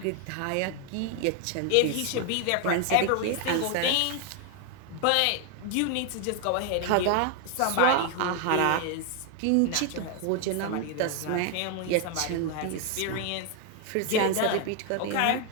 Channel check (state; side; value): different; both; correlation 0.01